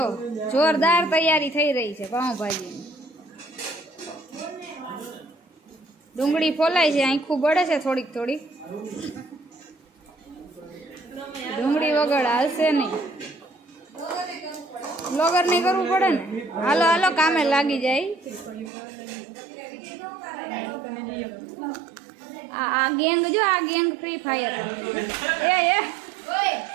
જોરદાર તૈયારી થઈ રહી છે પાઉંભાજીની। ડુંગળી ફોલાય છે, આખું બળે છે થોડીક થોડીક। ડુંગળી વગર હાલશે નહીં, બ્લોગર નહીં કરવું પડે ને। હાલો હાલો કામે લાગી જાય। આ ગેંગ જો, આ ગેંગ ફ્રી ફાયર એ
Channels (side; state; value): left; drops out; at 18.7 s